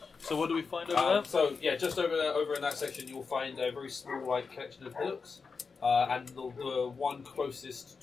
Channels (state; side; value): quieter; right; 5.0 dB